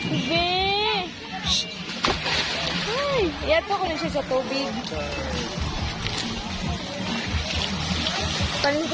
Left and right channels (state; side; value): identical; both; correlation 1.00